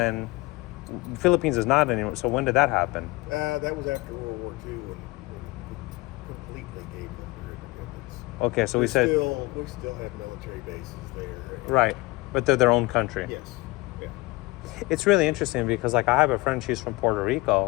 Philippines is not anymore. So when did that happen? That was after World War II when we completely gave them their independence. Okay, so we we said still have military bases there. right, but they're their own country. Yes. Yeah. It's really interesting because like I have a friend, she's from Puerto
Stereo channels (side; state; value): right; quieter; 22.5 dB